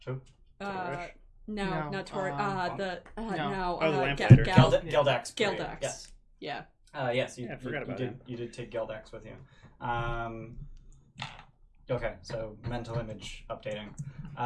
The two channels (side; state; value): both; identical; correlation 1.00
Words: Who? Not Tori. the Geldax. Geldax. Yes. Yeah. Yes. I forgot about him. You did take Geldax with you. Okay, so mental image updating.